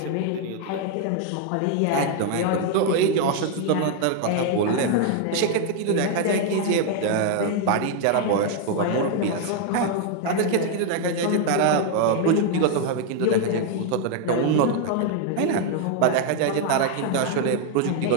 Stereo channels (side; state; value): both; different; correlation 0.00